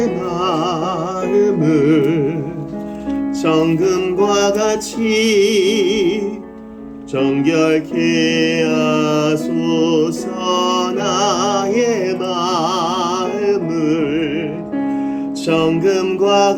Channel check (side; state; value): both; identical; correlation 1.00